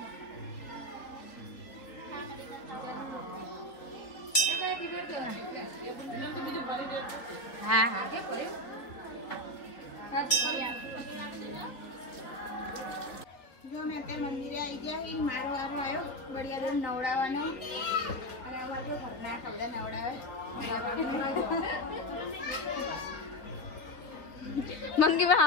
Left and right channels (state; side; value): late; right; 4.0 ms